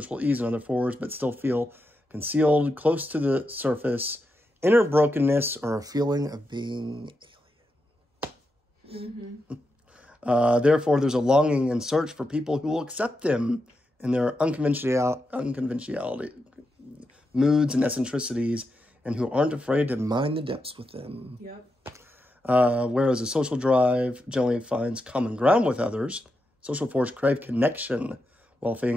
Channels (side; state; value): both; normal; correlation 0.86